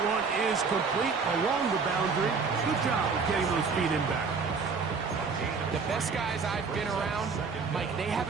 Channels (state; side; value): quieter; left; 5.1 dB